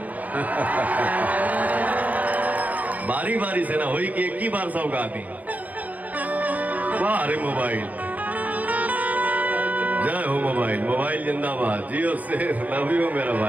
बारी बारी से ना होई कि एक ही बार सब गा दी। वाह अरे मोबाइल, जय हो मोबाइल, मोबाइल जिंदाबाद, जियो से लव यू मेरा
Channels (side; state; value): left; late; 0.077 ms